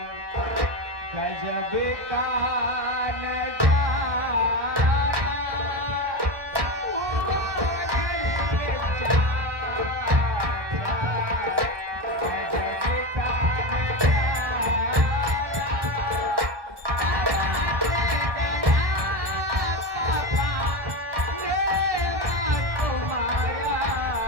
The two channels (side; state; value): left; late; 1.1 ms